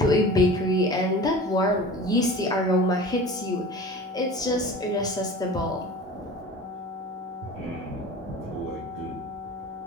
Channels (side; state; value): both; normal; correlation 0.38